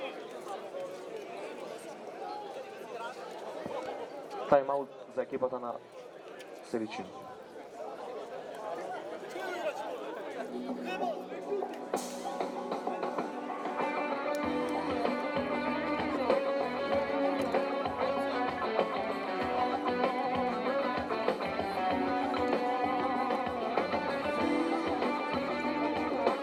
Тайм-аут за екипата на Сиричино.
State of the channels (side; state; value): both; identical; correlation 1.00